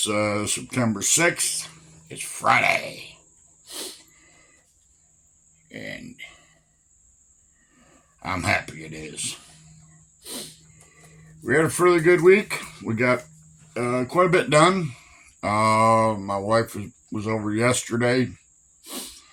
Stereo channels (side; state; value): both; identical; correlation 1.00